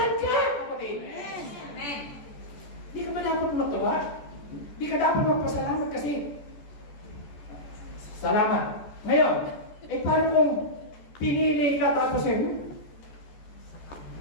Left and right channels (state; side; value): late; right; 14 ms